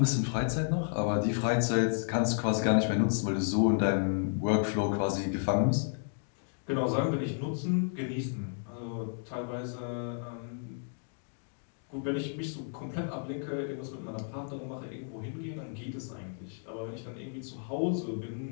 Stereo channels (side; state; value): right; silent; digital silence